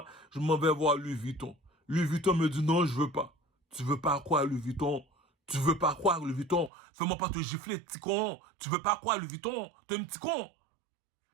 je m'en vais voir Louis Vuitton. Louis Vuitton me dit non, je veux pas. Tu veux pas quoi, Louis Vuitton? Tu veux pas quoi, Louis Vuitton? Fais-moi pas te gifler, petit con. Tu veux pas quoi, Louis Vuitton? T'es un petit con.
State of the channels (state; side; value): drops out; left; at 6.7 s